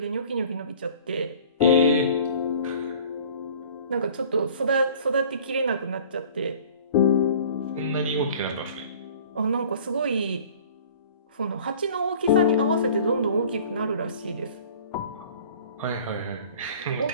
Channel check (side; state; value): both; inverted; correlation -0.48